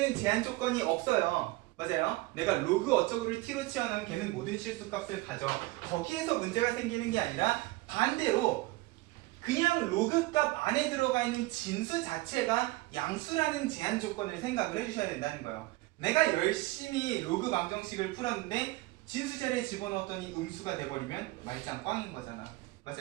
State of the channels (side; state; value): left; quieter; 20.7 dB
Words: 제한 조건이 없어요. 맞아요? 내가 로그 어쩌고를 t로 치환하면 걔는 모든 실수 값을 가져. 거기에서 문제가 생기는 게 아니라 반대로 그냥 로그 값 안에 들어가 있는 진수 자체가 양수라는 제한 조건을 생각을 해주셔야 된다는 거예요. 내가 열심히 로그 방정식을 풀었는데 진수 자리에 집어넣었더니 음수가 돼버리면 말짱 꽝인 거잖아.